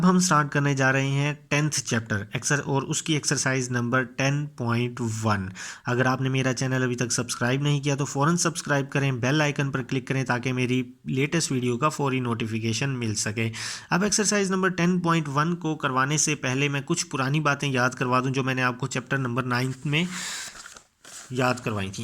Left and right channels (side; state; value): both; identical; correlation 1.00